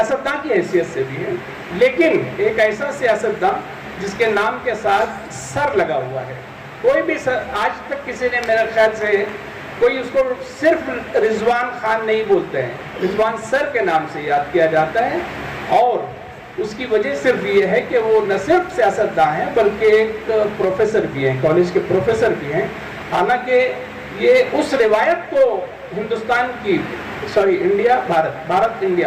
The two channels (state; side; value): identical; both; correlation 1.00